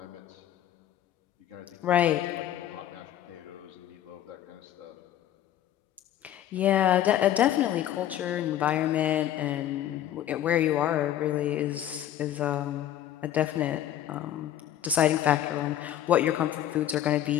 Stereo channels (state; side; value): quieter; right; 11.6 dB